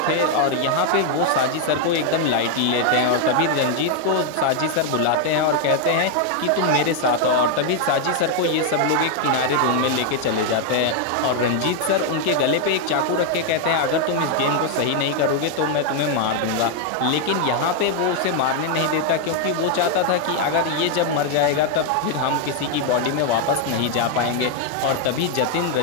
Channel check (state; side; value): different; both; correlation 0.00